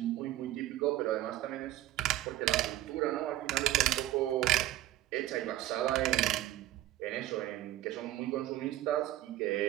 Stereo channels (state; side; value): quieter; left; 14.5 dB